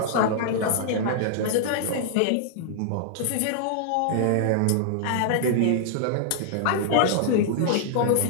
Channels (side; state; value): both; different; correlation -0.01